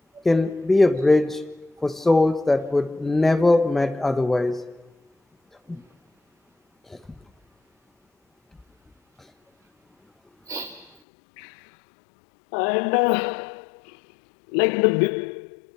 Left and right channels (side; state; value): right; drops out; at 10.9 s